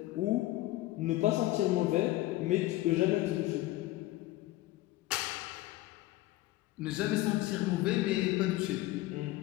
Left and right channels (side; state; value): right; quieter; 17.2 dB